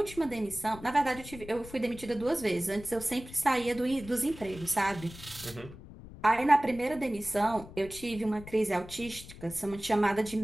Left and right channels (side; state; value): left; noise; rumble, 16 dB below the sound